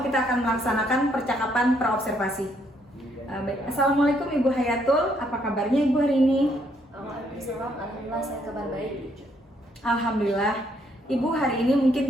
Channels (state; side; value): normal; both; correlation 0.71